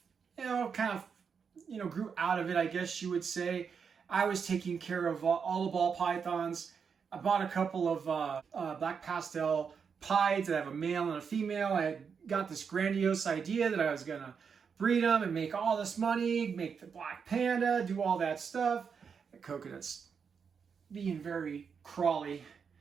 grew out of it, I guess you would say. I was taking care of all the ball pythons. I bought a couple of black pastel pieds. I have a male and a female. I had got this grandiose idea that I was going to breed them and make all this money, make the black panda, do all that stuff. The coconut's being very crawly.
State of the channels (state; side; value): quieter; left; 6.3 dB